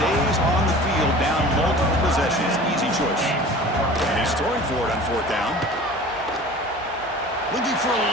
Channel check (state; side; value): normal; both; correlation 0.41